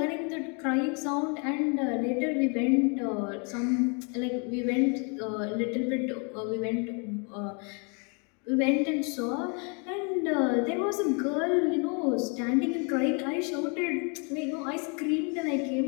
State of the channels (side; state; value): right; quieter; 36.0 dB